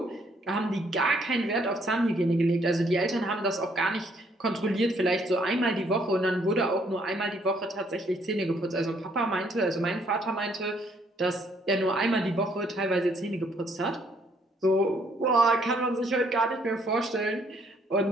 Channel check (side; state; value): both; normal; correlation 0.67